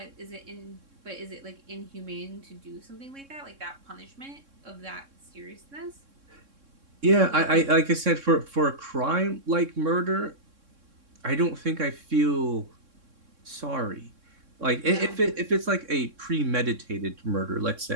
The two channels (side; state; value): left; late; 3.6 ms